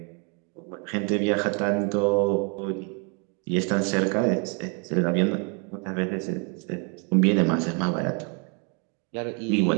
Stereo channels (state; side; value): quieter; left; 35.9 dB